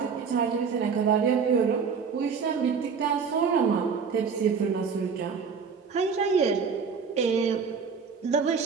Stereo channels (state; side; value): quieter; left; 5.8 dB